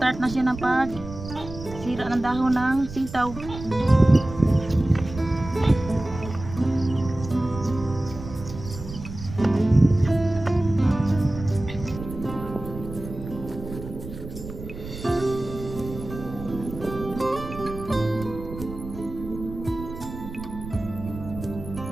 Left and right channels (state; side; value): noise; right; rumble, 11 dB below the sound